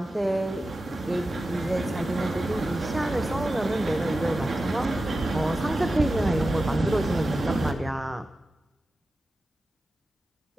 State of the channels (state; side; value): normal; both; correlation 0.93